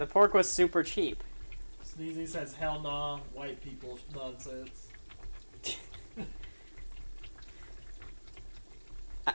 pork was super cheap. Sneezy says, hell nah, white people nonsense.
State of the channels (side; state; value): both; inverted; correlation -1.00